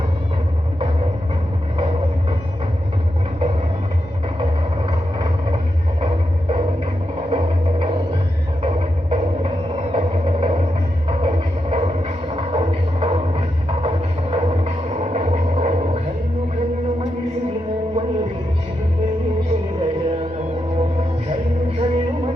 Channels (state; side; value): normal; both; correlation 0.85